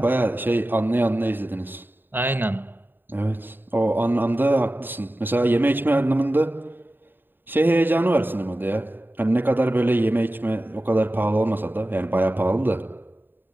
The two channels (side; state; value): left; late; 0.094 ms